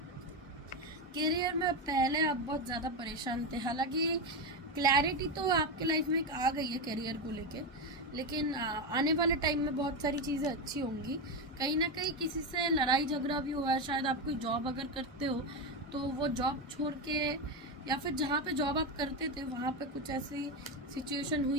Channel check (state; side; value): normal; both; correlation 0.12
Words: करियर में पहले आप बहुत ज़्यादा परेशान थे, हालांकि क्लैरिटी तो आपके लाइफ में एक आ गई है करियर को लेके, लेकिन आने वाले टाइम में बहुत सारी चीज़ें अच्छी होंगी। कहीं ना कहीं किसी से लड़ाई झगड़ा भी हुआ है, शायद आप कोई जॉब अगर करते हो तो वो जॉब छोड़ के, या फिर जहाँ पे जॉब आप करते थे वहाँ पे कुछ ऐसी सिचुएशन